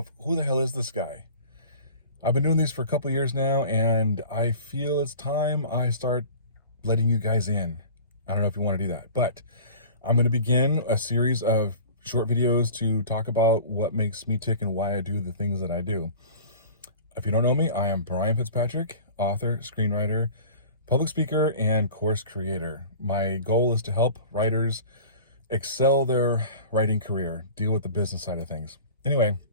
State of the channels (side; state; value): both; inverted; correlation -0.41